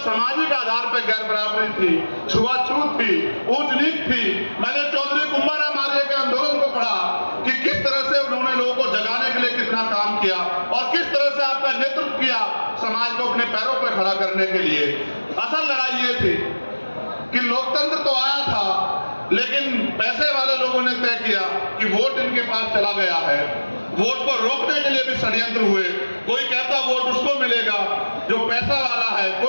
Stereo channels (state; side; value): inverted; both; correlation -1.00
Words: सामाजिक आधार पर गैर बराबरी थी, छुआछूत थी, ऊंच नीच थी। मैंने चौधरी कुंभाराम आर्य के आंदोलन को पढ़ा कि किस तरह से उन्होंने लोगों को जगाने के लिए कितना काम किया और किस तरह से आपका नेतृत्व किया समाज को अपने पैरों पर खड़ा करने के लिए। असल लड़ाई ये थी कि लोकतंत्र तो आया था, लेकिन पैसे वाले लोगों ने तय किया कि वोट इनके पास चला गया है। वोट को रोकने के लिए भी षड्यंत्र हुए। कोई कहता वोट उसको मिलेगा जो पैसा वाला है,